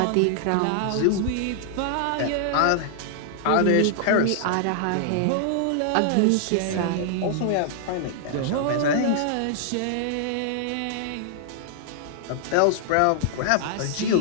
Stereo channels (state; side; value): different; both; correlation 0.00